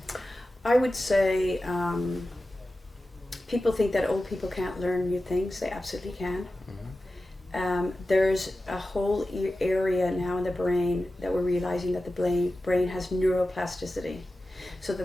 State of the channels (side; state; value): both; normal; correlation 0.94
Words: I would say people think that old people can't learn new things. They absolutely can. Mm-hmm. There's a whole area now in the brain that we're realizing that the brain has neuroplasticity, so